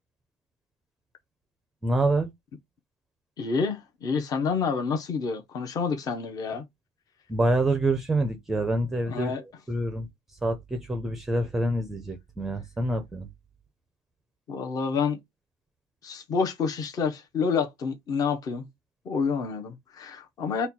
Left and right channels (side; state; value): both; normal; correlation 0.68